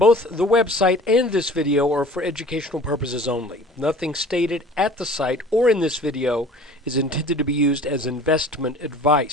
the website and this video are for educational purposes only. Nothing stated at the site or in this video is intended to be used as investment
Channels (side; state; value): both; normal; correlation 0.46